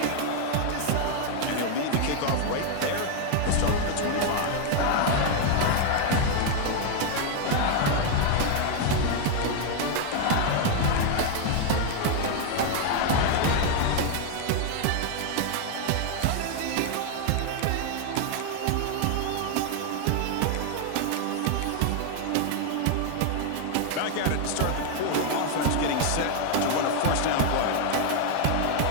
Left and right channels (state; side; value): different; both; correlation 0.00